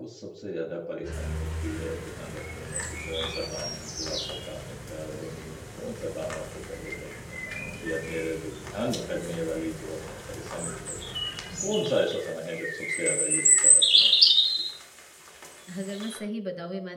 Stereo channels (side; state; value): both; identical; correlation 1.00